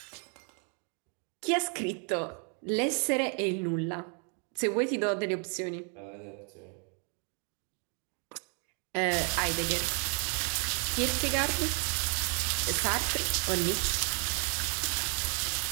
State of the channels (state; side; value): quieter; left; 39.5 dB